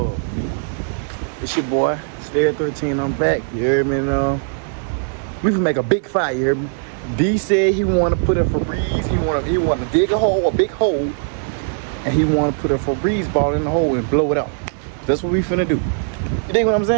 it's your boy, CEDARIUS13. I'm back. You heard me now? We can make a big fire. You heard me? D said he want to put a Febreze. He want to dig a big hole, and he want to put a Febreze ball in the hole and blow it out. That's what we finna do. You dig what I'm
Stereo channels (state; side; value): silent; left; digital silence